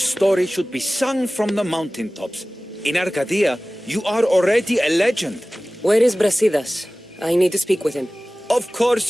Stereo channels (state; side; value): normal; both; correlation 0.97